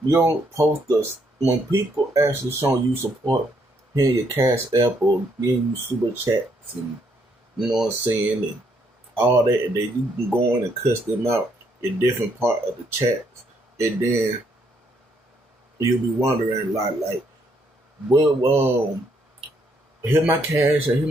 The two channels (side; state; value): both; normal; correlation 0.72